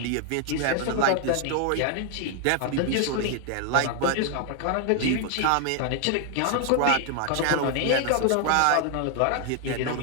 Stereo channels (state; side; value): different; both; correlation 0.00